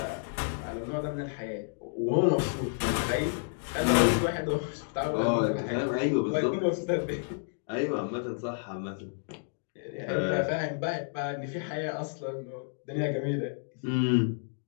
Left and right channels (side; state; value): right; silent; digital silence